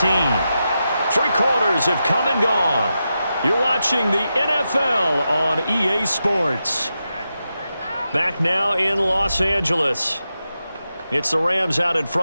3 quarters have come and gone. You're watching the NFL on EA Sports. Back now in Los Angeles. It's the Rams out in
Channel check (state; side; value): inverted; both; correlation -0.89